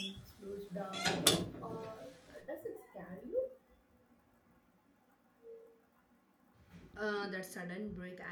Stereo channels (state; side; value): identical; both; correlation 1.00